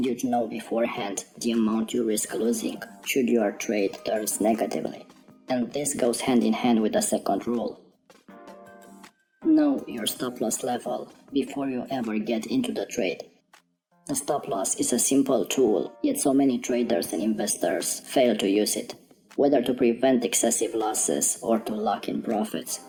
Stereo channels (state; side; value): identical; both; correlation 1.00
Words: you'd know beforehand the amount you risk losing should your trade turns negatively. And this goes hand in hand with the second rule. Know your stop-loss level before you ever get into the trade. The stop-loss is a simple tool, yet so many traders and investors fail to use it, whether to prevent excessive losses or to lock in profits.